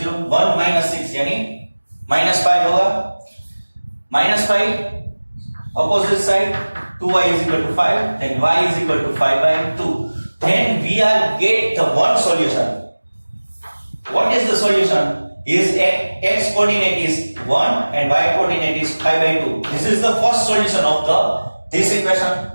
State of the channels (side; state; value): both; inverted; correlation -1.00